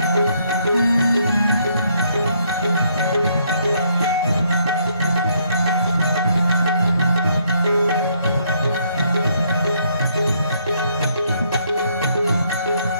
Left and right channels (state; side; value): inverted; both; correlation -0.70